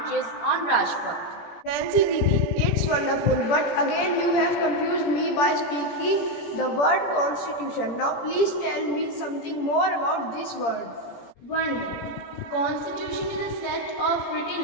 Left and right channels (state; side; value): late; right; 17 ms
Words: on Rajpath. Nancy Didi, it's wonderful, but again you have confused me by speaking the word constitution. Now please tell me something more about this word. One minute. Constitution is a set of